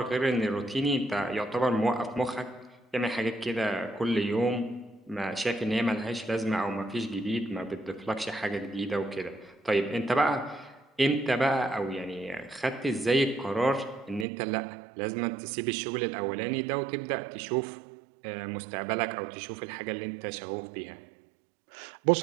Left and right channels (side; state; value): left; drops out; at 14.2 s